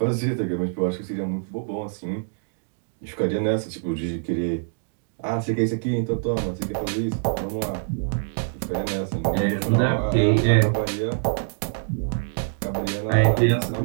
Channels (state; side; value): silent; left; digital silence